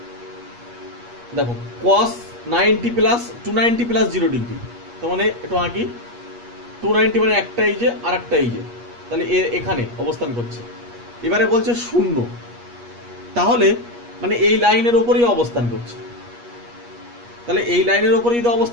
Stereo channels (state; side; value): late; left; 8.4 ms